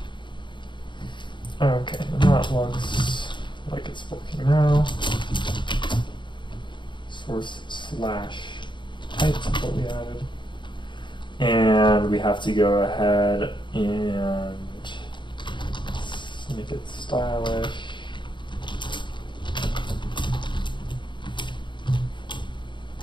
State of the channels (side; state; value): right; late; 0.23 ms